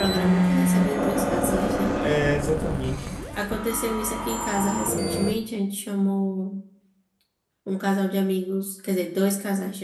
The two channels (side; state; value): both; identical; correlation 1.00